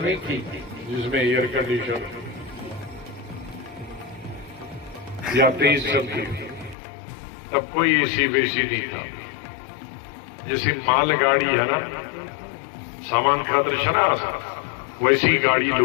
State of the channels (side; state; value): right; drops out; at 6.8 s